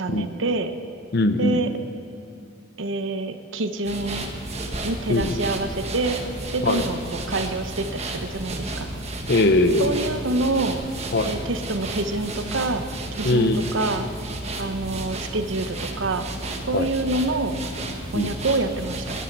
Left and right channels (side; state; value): both; normal; correlation 0.23